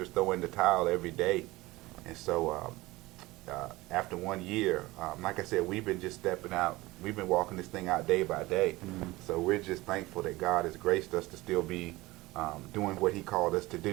throw in the towel every day. And so after 1 year, like I said, we've been just stepping out. We've been walking this thing out day by day. So we're just thankful that God has graced us to still be doing what he called us to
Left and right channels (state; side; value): quieter; left; 20.1 dB